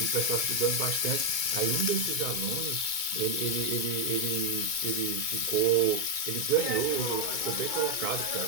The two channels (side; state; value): left; late; 2.2 ms